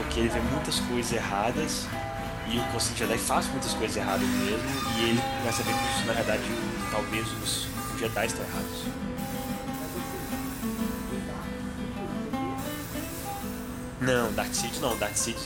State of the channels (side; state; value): both; identical; correlation 1.00